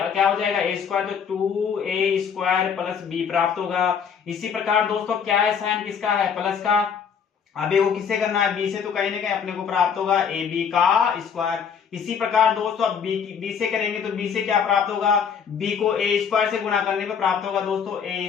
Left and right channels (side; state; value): right; quieter; 7.0 dB